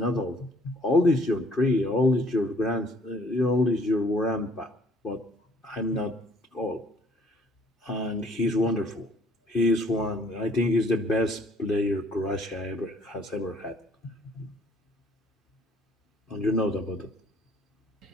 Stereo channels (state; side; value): normal; both; correlation 0.59